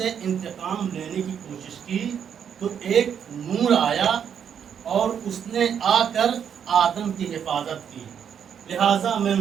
انتقام لینے کی کوشش کی تو ایک نور آیا اور اس نے آ کر آدم کی حفاظت کی، لہٰذا میں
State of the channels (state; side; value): quieter; left; 8.1 dB